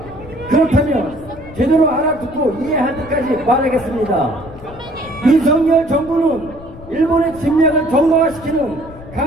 그렇다면 제대로 알아듣고 이해할 때까지 말하겠습니다. 윤석열 정부는 일본의 침략을 정당화시키는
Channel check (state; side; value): noise; left; rumble, 18 dB below the sound